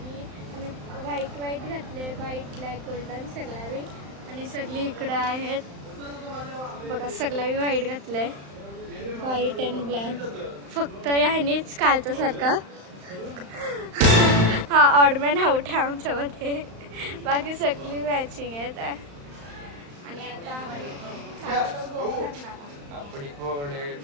आम्ही व्हाईट घातले, व्हाईट ब्लॅक गोल्डन सगळ्यावी आणि सगळी इकडं आहेत बघा, सगळ्यावी व्हाईट घातलंय, व्हाईट अँड ब्लॅक. फक्त ह्यानेच कालच्यासारखा हा ऑडमॅन आउट आहे आमच्यामध्ये, बाकी सगळी मॅचिंग आहेत. आणि आता चाललो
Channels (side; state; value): left; late; 35 ms